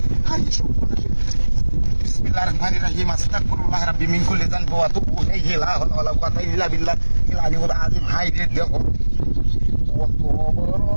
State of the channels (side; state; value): both; inverted; correlation -1.00